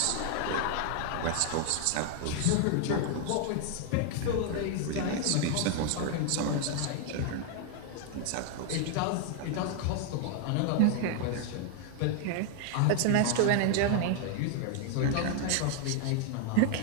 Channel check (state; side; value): different; both; correlation 0.00